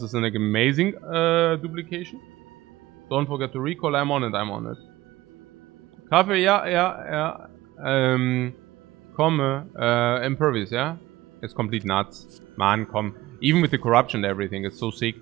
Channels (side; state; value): left; quieter; 17.4 dB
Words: is an amazing duplication. Don't forget to recall. I'm on it. Kaffee, yeah. Komme, Impervious, yeah? It's complete nuts. Man, komm. Even with the corruption and everything, it's so sick.